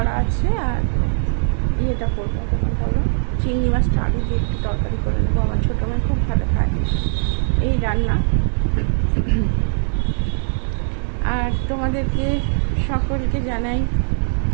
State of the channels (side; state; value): left; silent; digital silence